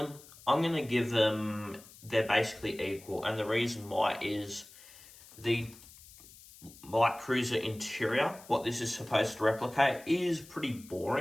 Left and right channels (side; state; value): left; noise; hiss, 21 dB below the sound